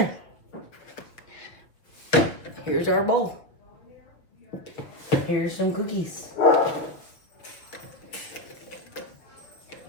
Here's our bowl. Here's some cookies.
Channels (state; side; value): late; right; 6.2 ms